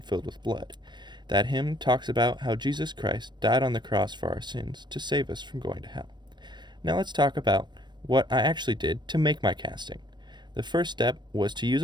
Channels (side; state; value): left; late; 0.22 ms